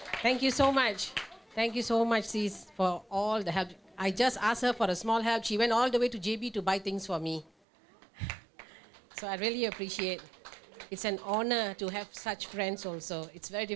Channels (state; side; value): drops out; left; at 7.5 s